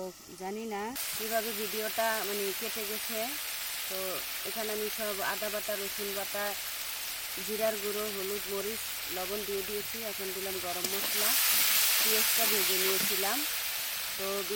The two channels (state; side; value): identical; both; correlation 1.00